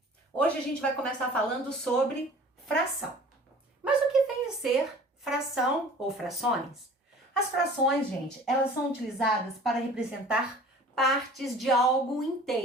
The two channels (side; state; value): both; normal; correlation 0.46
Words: Hoje a gente vai começar falando sobre fração. Mas o que vem a ser fração ou frações? As frações, gente, elas são utilizadas para representar partes de algo